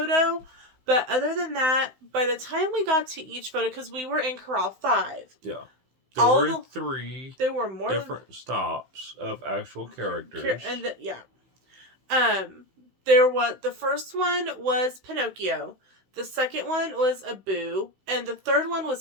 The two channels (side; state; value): left; late; 16 ms